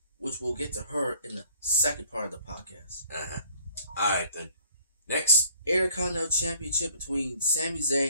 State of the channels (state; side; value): inverted; both; correlation -0.57